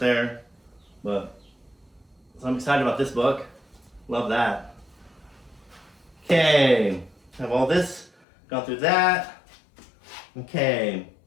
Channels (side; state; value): right; drops out; at 8.1 s